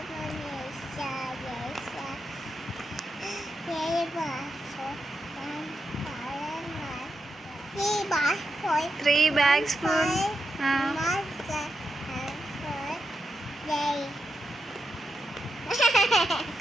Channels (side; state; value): both; normal; correlation 0.86